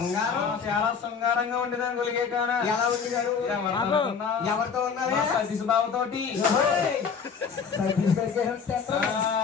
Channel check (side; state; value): right; quieter; 6.2 dB